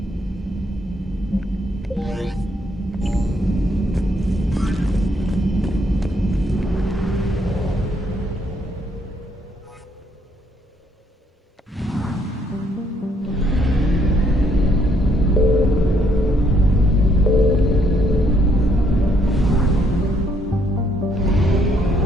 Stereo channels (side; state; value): both; normal; correlation 0.70